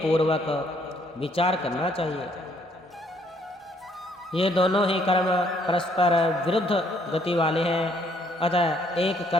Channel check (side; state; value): both; normal; correlation 0.66